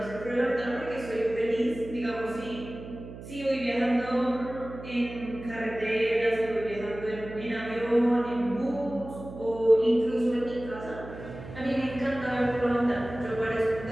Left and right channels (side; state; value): right; noise; hum, 13 dB below the sound